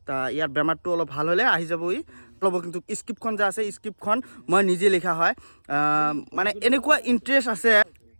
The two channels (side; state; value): both; inverted; correlation -1.00